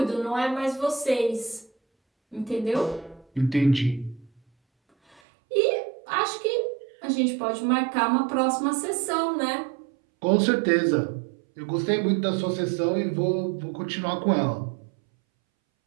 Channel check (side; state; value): left; drops out; at 5.2 s